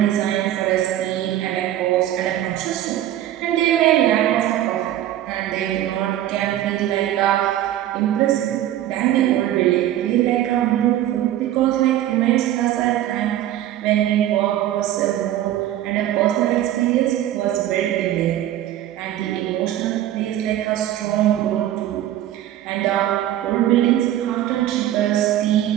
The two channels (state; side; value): quieter; left; 12.7 dB